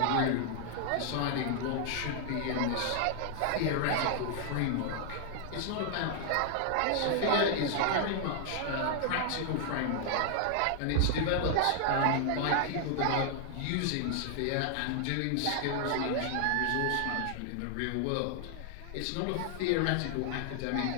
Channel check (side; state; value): both; different; correlation 0.00